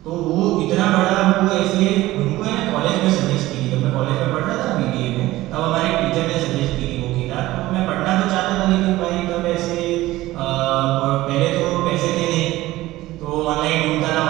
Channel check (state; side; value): quieter; left; 17.1 dB